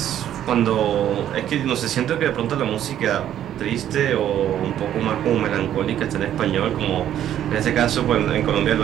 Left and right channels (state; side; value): quieter; left; 11.0 dB